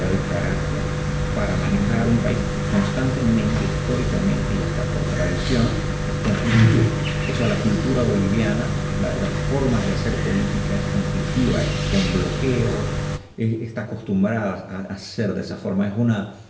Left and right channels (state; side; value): identical; both; correlation 1.00